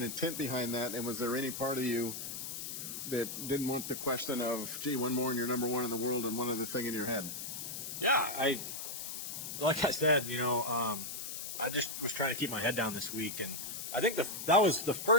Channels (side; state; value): left; noise; hiss, 6 dB below the sound